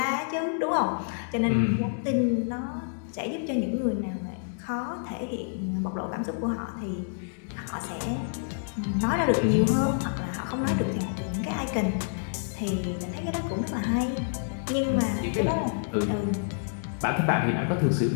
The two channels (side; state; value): right; silent; digital silence